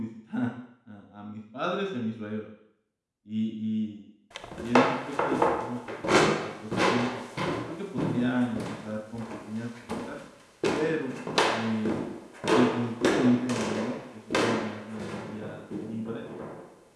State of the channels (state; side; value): identical; both; correlation 1.00